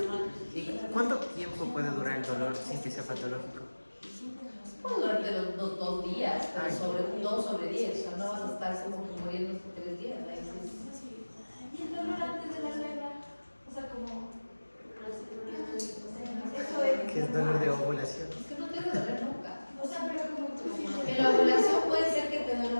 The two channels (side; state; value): both; inverted; correlation -1.00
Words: ¿Y cuánto tiempo puede durar el dolor sin que sea patológico? Puede durante los 2 días, pero sobre 2 sobre 10, o sea, no vas a estar como que muriendo por 3 días. ¿No? Y el dolor antes de la regla, o sea, como. Eso es. ¿Qué es dolor de ovulación? Es que no te debe doler nunca. O sea, pero como tú sientes. En la ovulación puede ser que te duele